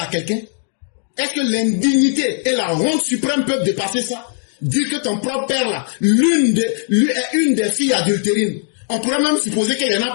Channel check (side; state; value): right; silent; 56 dB below the other